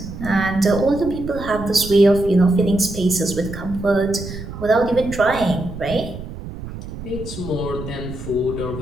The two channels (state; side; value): noise; right; rumble, 11 dB below the sound